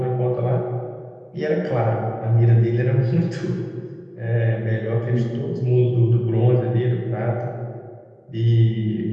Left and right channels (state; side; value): identical; both; correlation 1.00